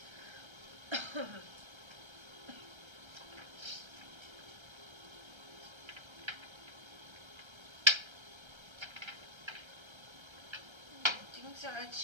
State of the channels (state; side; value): late; left; 1.3 ms